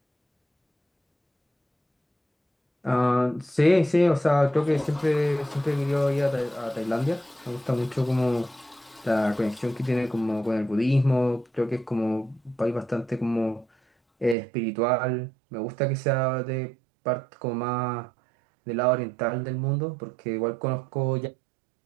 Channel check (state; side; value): drops out; left; at 14.4 s